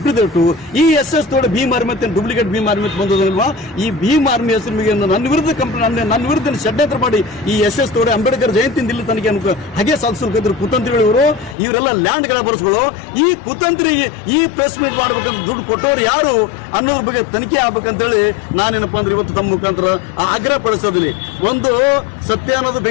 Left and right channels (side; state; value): right; drops out; at 11.6 s